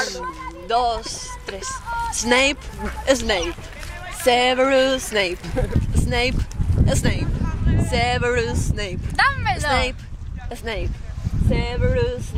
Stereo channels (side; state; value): both; identical; correlation 1.00